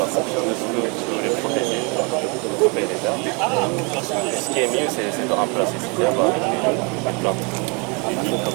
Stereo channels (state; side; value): quieter; left; 32.4 dB